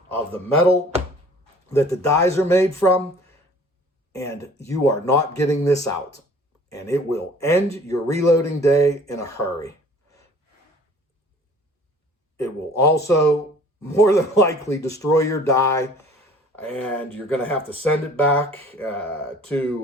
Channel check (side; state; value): both; normal; correlation 0.51